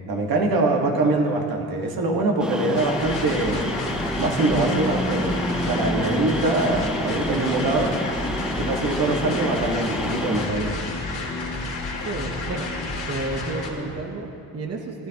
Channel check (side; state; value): both; normal; correlation 0.36